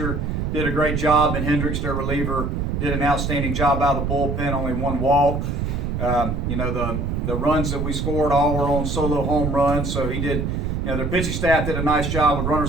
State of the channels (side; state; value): right; noise; rumble, 1 dB below the sound